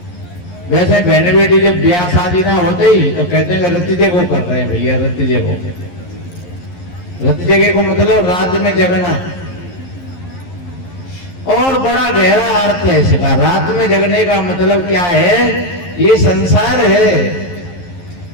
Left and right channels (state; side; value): late; right; 11 ms